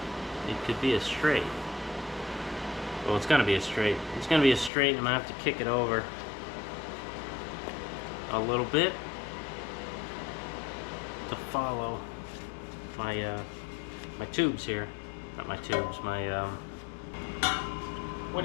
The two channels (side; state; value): right; drops out; at 4.7 s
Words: it could be a straight. Well, it's going to be a straight. It's going to be a straight, and I'm going to have to kick it over a little bit to follow my my tubes here. Not my tubes, my what